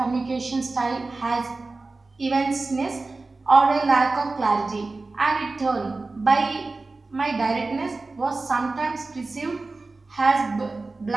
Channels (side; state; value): left; quieter; 3.5 dB